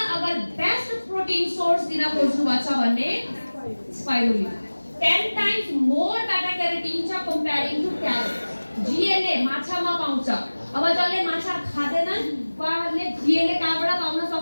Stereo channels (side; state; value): both; inverted; correlation -1.00